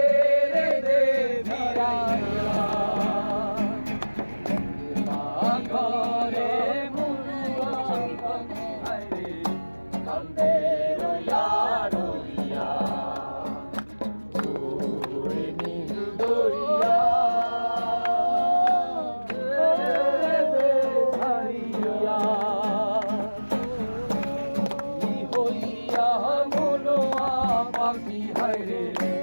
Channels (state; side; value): inverted; both; correlation -1.00